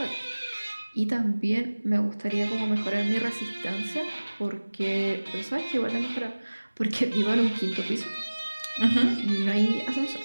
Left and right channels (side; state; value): both; inverted; correlation -1.00